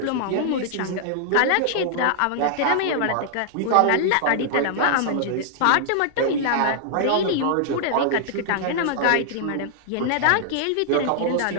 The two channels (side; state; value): both; different; correlation -0.01